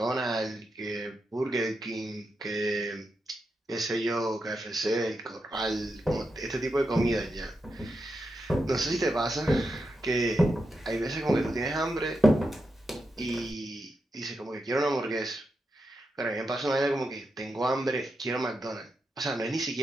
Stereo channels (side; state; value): both; normal; correlation 0.86